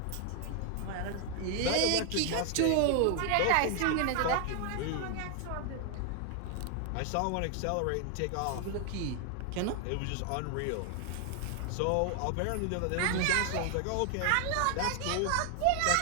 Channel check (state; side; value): different; both; correlation 0.00